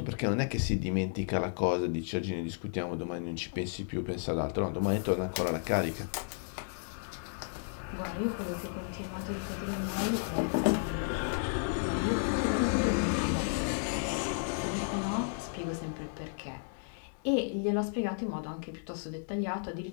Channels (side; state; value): right; silent; digital silence